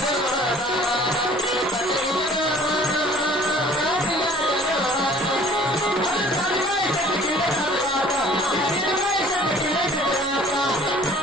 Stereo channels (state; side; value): noise; left; hum, 25 dB below the sound